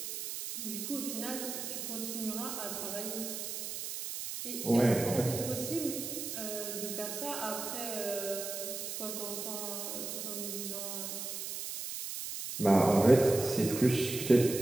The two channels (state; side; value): noise; right; hiss, 6 dB below the sound